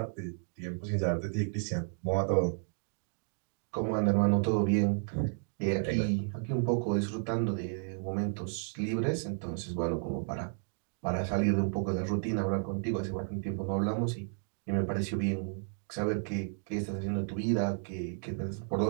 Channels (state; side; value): silent; left; 56 dB below the other